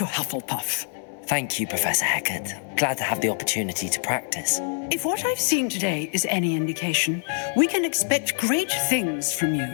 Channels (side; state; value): right; silent; 62 dB below the other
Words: Hufflepuff. Thank you, Professor Hecat. Glad to have the opportunity to practice. If what I've seen today is any indication, we can expect great things from